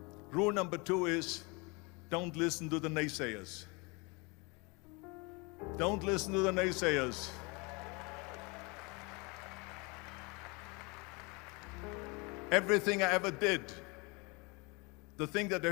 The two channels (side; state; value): right; quieter; 28.5 dB